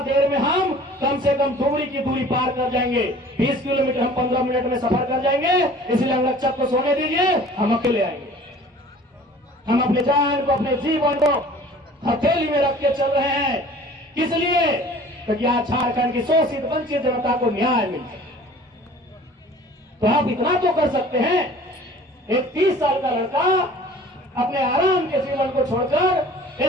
देर में हम कम से कम दुबड़ी की दूरी पार कर जाएंगे। 20 किलोमीटर हम 15 मिनट में सफर कर जाएंगे, इसलिए अंगरक्षक को सोने दीजिए, हम अकेले आएंगे। हम अपने जान को, अपने जीवन को हथेली में रख के चल रहे हैं। किस लिए? क्योंकि आज झारखंड की शोषित वंचित जनता को न्याय मिल जाए। तो आप इतना तो कर सकते हैं, एक 30 साल का लड़का अपने आराम के जीवन को छोड़कर,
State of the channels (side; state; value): both; normal; correlation 0.47